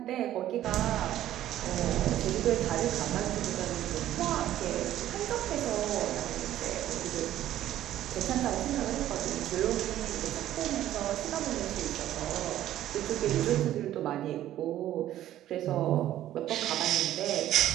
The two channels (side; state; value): left; quieter; 12.9 dB